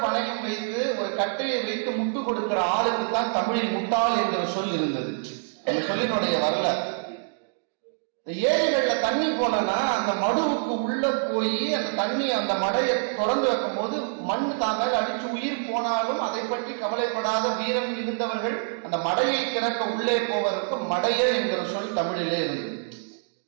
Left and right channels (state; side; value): silent; left; digital silence